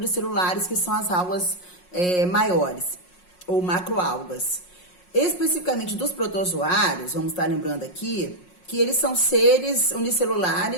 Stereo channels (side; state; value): right; late; 5.5 ms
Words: que são as algas maiores, ou macroalgas. Especificamente dos protozoários, vamos estar lembrando aqui, que eles são seres